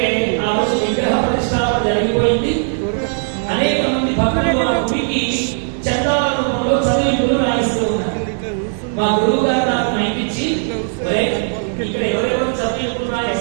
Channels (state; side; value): silent; left; 62 dB below the other